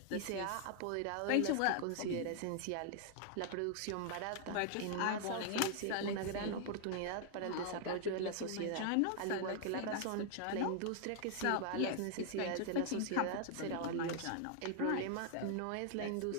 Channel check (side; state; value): both; different; correlation 0.00